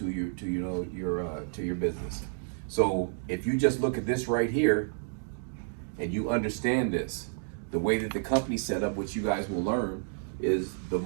your business. So if you just look at this right here and you understand this, the way that the company's set up, which you guys will learn, is the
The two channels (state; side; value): silent; left; digital silence